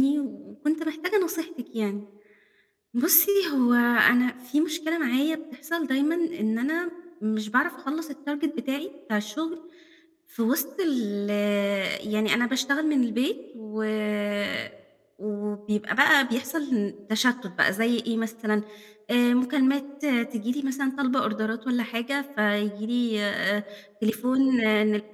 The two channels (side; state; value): both; identical; correlation 1.00